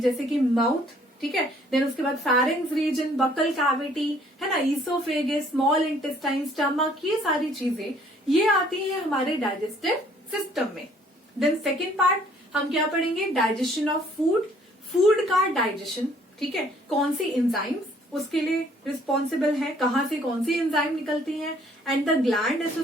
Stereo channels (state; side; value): normal; both; correlation 0.60